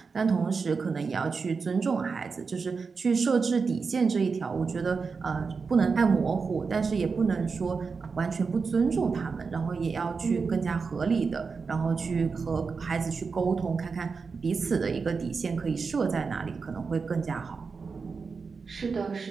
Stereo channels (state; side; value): quieter; left; 5.0 dB